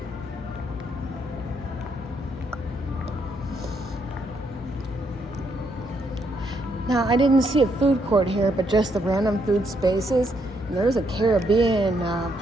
Now, I didn't see a food court here, but just the random food spaces. And there's a Caribbean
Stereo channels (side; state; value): both; normal; correlation 0.75